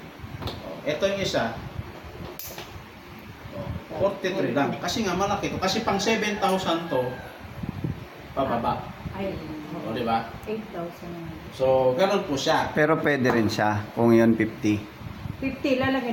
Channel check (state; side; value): identical; both; correlation 1.00